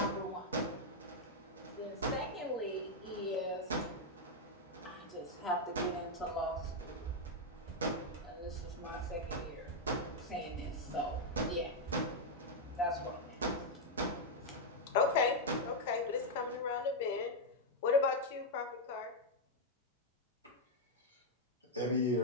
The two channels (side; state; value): both; normal; correlation -0.01